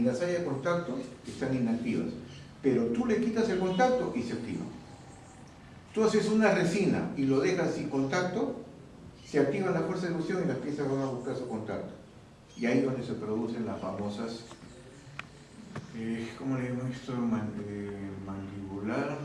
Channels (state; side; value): identical; both; correlation 1.00